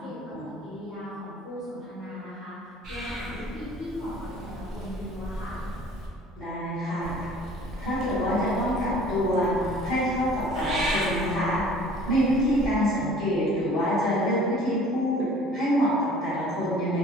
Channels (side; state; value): both; normal; correlation 0.50